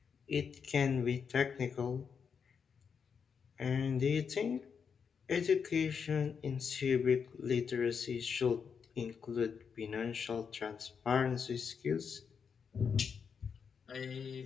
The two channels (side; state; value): right; quieter; 6.4 dB